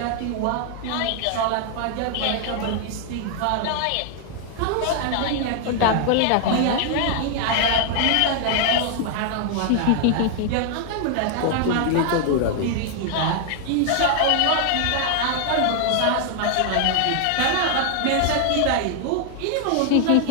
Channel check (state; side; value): different; both; correlation 0.00